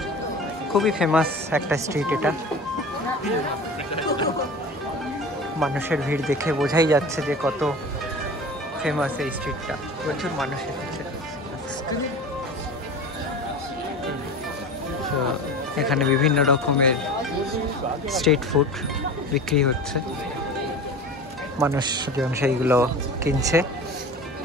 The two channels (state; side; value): normal; both; correlation 0.35